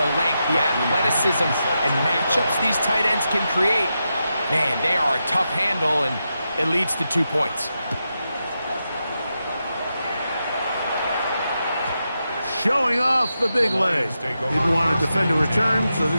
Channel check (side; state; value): both; inverted; correlation -0.87